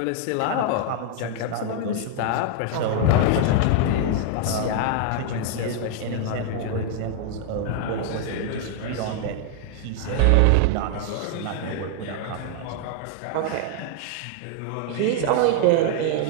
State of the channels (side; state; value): both; different; correlation 0.00